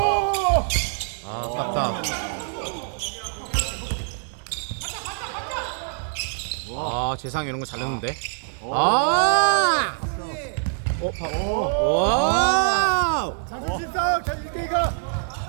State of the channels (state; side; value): silent; left; digital silence